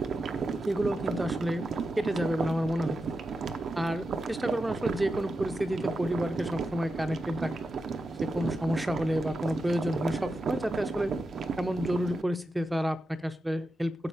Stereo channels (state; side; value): normal; both; correlation 0.89